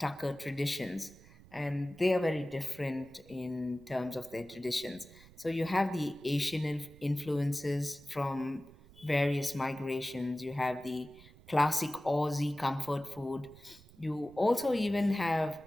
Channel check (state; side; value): noise; right; rumble, 23 dB below the sound